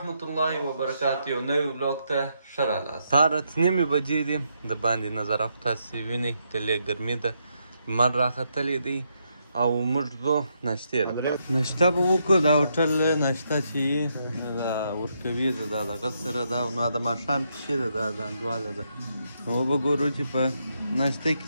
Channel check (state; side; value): inverted; both; correlation -0.79